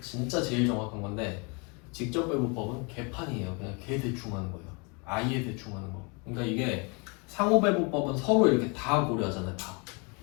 진짜 제일 정확한 건데 직접배분법은 개판이에요. 그냥 개 대충 하는 거예요. 아예 대충 하는 거. 그러니까 이게 상호배분법은 서로 이렇게 다 고려하잖아요. 다.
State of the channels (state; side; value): quieter; right; 32.2 dB